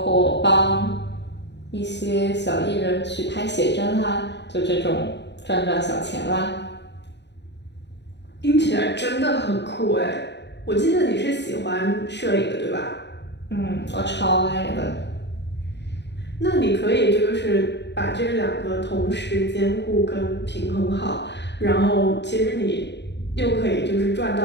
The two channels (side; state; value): right; late; 0.50 ms